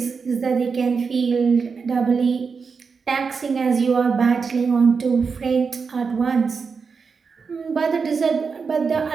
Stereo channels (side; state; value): left; quieter; 5.3 dB